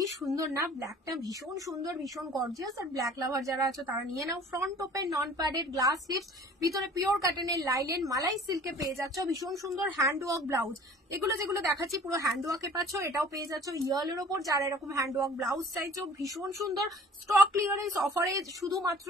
সুন্দর না, ব্ল্যাকটা ভীষণ সুন্দর, ভীষণ গর্জিয়াস। আর ব্ল্যাক লাভার যারা আছে তারা নিয়ে নাও। Front open, non padded, glass sleeves, ভিতরে পিওর কাটনের লাইলেন, মালাই সিল্কে পেয়ে যাচ্ছ ভীষণ সুন্দর হ্যান্ড ওয়ার্ক ব্লাউজ। এগুলো যেগুলো দেখাচ্ছি পুরো হ্যান্ড ওয়ার্কে পাচ্ছ, এটাও পেয়ে যাচ্ছ ইয়েলোর ওপর। যারা এরকম হ্যান্ড ওয়ার্ক ব্লাউজ চাইছো ভীষণ সুন্দর, স্টক ক্লিয়ারেন্স অফারে শুধুমাত্র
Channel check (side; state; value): both; normal; correlation 0.49